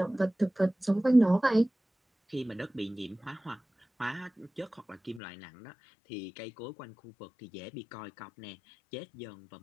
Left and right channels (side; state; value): right; drops out; at 5.2 s